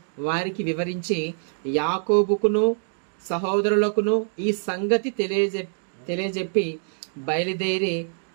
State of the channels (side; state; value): left; silent; digital silence